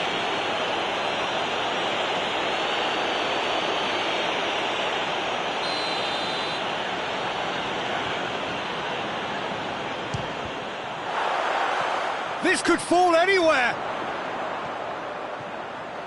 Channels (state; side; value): identical; both; correlation 1.00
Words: This could fall anywhere.